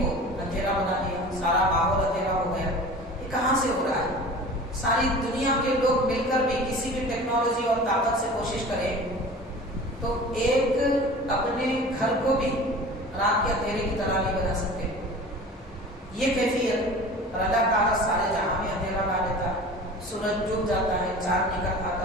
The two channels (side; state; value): both; normal; correlation 0.39